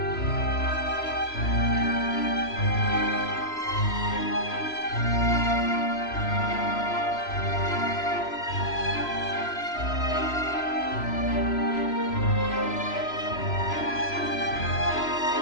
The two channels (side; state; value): right; late; 3.0 ms